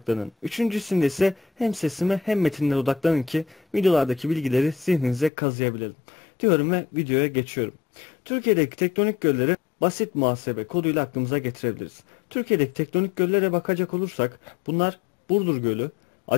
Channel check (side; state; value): right; drops out; at 5.3 s